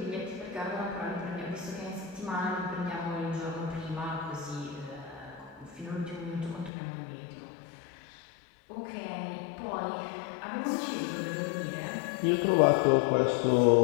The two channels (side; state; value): right; drops out; at 6.7 s